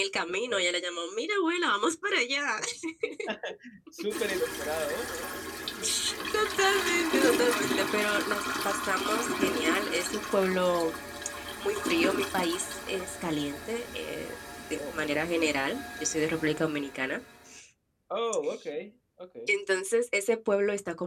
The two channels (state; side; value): identical; both; correlation 1.00